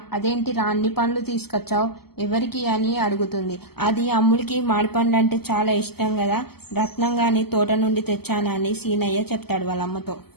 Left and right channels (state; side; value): late; right; 0.96 ms